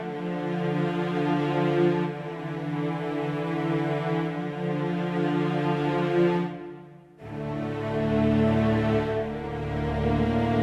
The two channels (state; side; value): identical; both; correlation 1.00